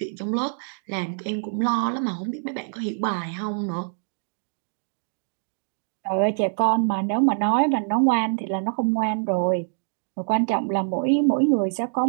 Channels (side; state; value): left; silent; digital silence